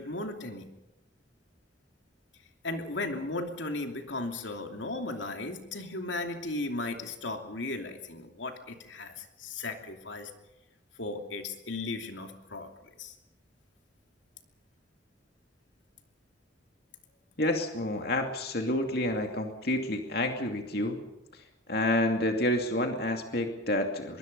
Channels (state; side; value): normal; both; correlation 0.26